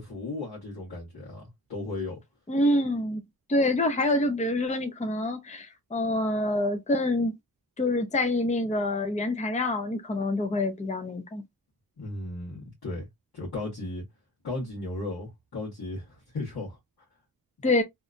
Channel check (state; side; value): normal; both; correlation 0.41